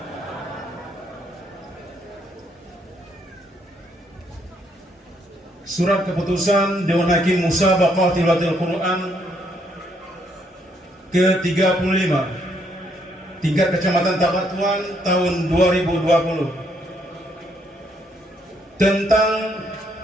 Surat keputusan Dewan Hakim Musabaqah Tilawatil Quran ke-35 tingkat Kecamatan Tabatuan tahun 2020 tentang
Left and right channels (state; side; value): normal; both; correlation 0.72